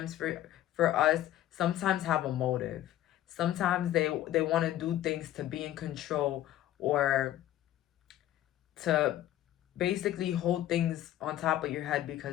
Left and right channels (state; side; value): quieter; right; 13.1 dB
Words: for us, sometimes have a motive. Sometimes they want to do things to be in control, or to basically hold things on top of your head